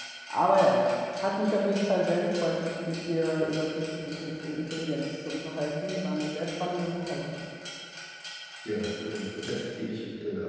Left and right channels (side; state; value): both; identical; correlation 1.00